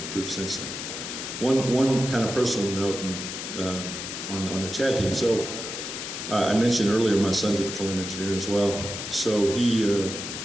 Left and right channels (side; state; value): left; noise; hiss, 6 dB below the sound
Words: since then. One kind of personal note on the Chad team. So I mentioned earlier my son's a petroleum engineer as well. So he